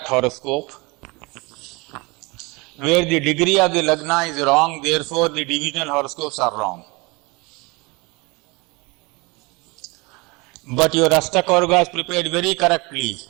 horoscope, where the degree of the Lagna is wrong, therefore the divisional horoscopes are wrong. But your Ashtakavarga is prepared very correctly.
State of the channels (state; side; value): quieter; left; 26.3 dB